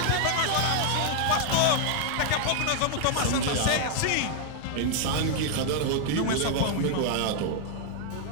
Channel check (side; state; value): both; different; correlation 0.00